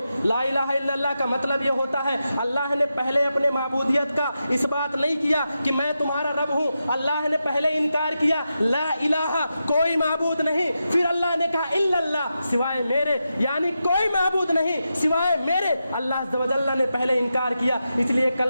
ला इलाहा इल्लल्लाह का मतलब ये होता है, अल्लाह ने पहले अपने माबूदियत का इस बात नहीं किया कि मैं तुम्हारा रब हूँ। अल्लाह ने पहले इनकार किया, ला इलाहा, कोई माबूद नहीं। फिर अल्लाह ने कहा इल्लल्लाह, सिवाय मेरे, यानी कोई माबूद नहीं सिवाय मेरे। अल्लाह अज़्ज़ व जल्ल ने पहले इनकार किया। इसलिए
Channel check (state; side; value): inverted; both; correlation -0.88